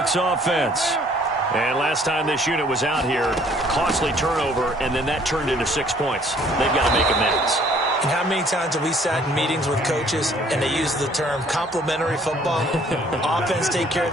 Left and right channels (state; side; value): normal; both; correlation 0.59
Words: offense. And last time this unit was out here, costly turnover, and then that turned into 6 points. They've got to make amends. And how many times have we sat in meetings with coaches and they use the term complementary football? Offense take care of